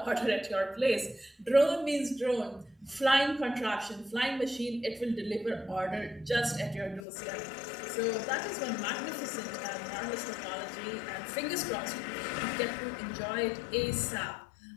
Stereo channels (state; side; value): drops out; right; at 7.1 s